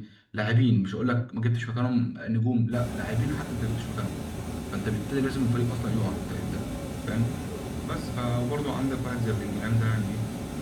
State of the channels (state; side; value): identical; both; correlation 1.00